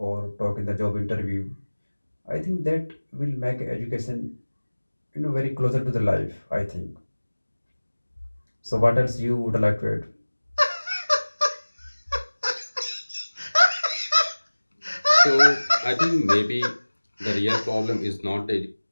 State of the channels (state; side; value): inverted; both; correlation -1.00